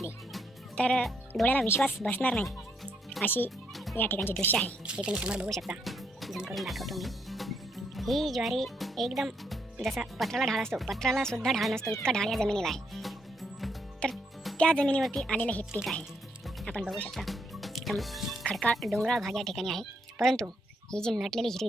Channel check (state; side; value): normal; both; correlation 0.75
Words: तर डोळ्याला विश्वास बसणार नाही अशी या ठिकाणची दृश्य आहे। हे तुम्ही समोर बघू शकता, झूम करून दाखवतो मी। ही ज्वारी एकदम जसा पत्राला ढाळ असतो, पत्राला सुद्धा ढाळ नसतो इतका ढाळ या जमिनीला आहे। तर त्या जमिनीवरती आलेलं हे पीक आहे, आपण बघू शकता। एकदम खडकाळ डोंगराळ भाग या ठिकाणी आहे, परंतु ही जी नटलेली